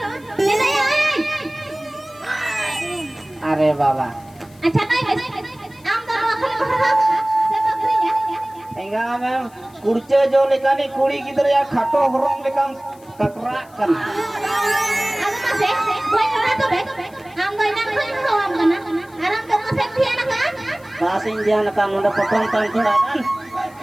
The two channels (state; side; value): noise; left; hiss, 27 dB below the sound